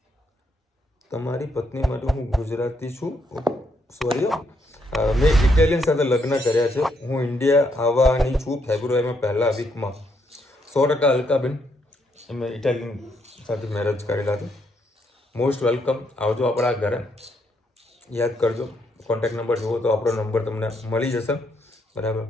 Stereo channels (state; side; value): normal; both; correlation 0.75